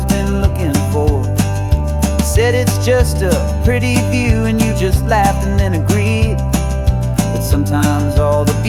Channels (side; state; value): both; identical; correlation 1.00